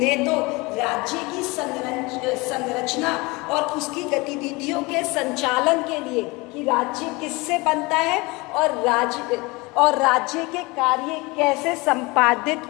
तो राज्य की संरचना और उसकी गतिविधियों के संचालन के लिए कि राज्य किससे बनता है और राज्य के कार्य कैसे संपादित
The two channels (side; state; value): right; quieter; 24.7 dB